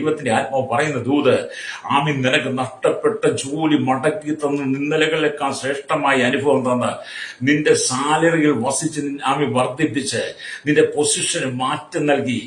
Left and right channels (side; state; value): both; identical; correlation 1.00